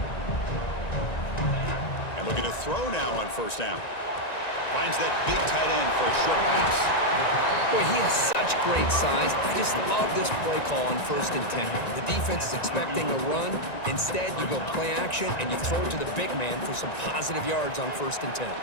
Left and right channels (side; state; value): right; late; 1.9 ms